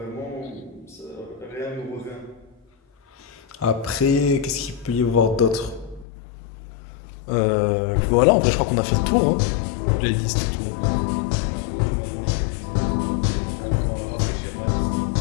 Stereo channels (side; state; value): right; drops out; at 6.1 s